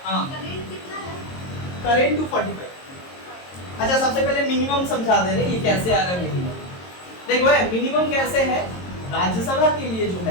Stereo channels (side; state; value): right; late; 22 ms